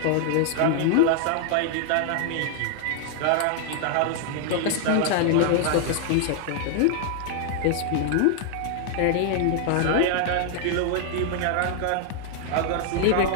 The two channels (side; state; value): both; different; correlation 0.00